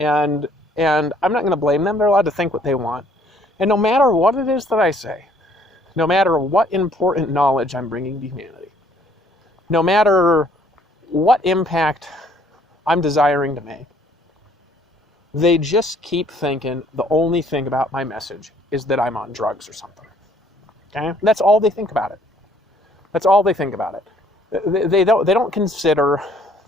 I'm not going to blame them. They're allowed to think what they want. And no matter what it is that I say, no matter what important knowledge I'm bringing to humanity, no matter what impact I'm desiring to make, they just keep thinking the only thing about my message is that I'm on drugs or something. Okay? That's all they think about it. That's all they think about it. They don't consider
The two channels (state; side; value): normal; both; correlation 0.61